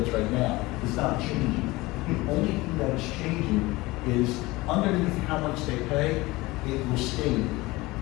right now is not changing. The only thing that is changing is underneath how much they pay, it will state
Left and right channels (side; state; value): right; quieter; 21.0 dB